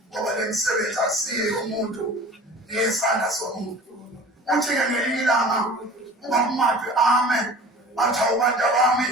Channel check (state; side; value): normal; both; correlation 0.42